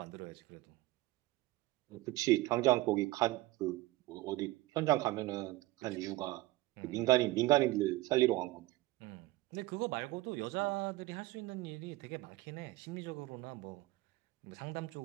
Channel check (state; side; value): quieter; left; 18.6 dB